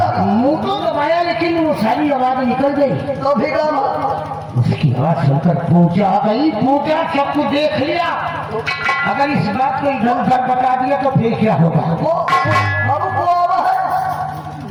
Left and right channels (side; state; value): both; identical; correlation 1.00